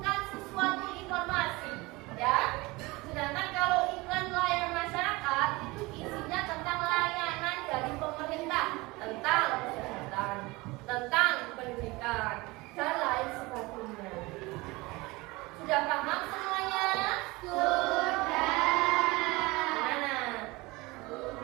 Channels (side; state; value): left; quieter; 22.8 dB